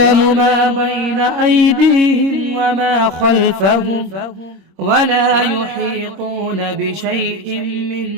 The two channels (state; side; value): late; left; 26 ms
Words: ما بين أيديهم وما خلفهم ولا يحيطون بشيء من